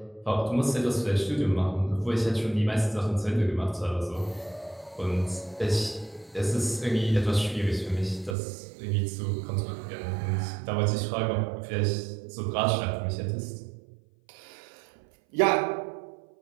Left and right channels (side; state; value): left; drops out; at 8.3 s